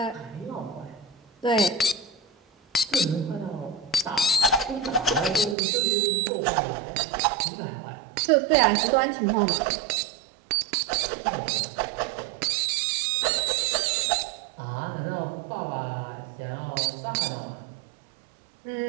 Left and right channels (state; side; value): drops out; left; at 5.6 s